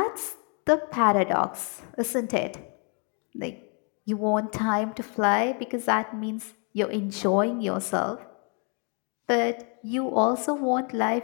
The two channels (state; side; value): quieter; right; 37.9 dB